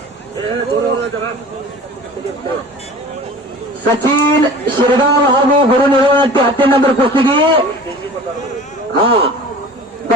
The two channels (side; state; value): both; normal; correlation 0.41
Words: ಸಚಿನ್ ಶಿರ್ಗಾಂವ್ ಹಾಗೂ ಗುರು ನಿರ್ವಹಣೆ 10ನೇ ನಂಬರ್ ಕುಸ್ತಿಗೆ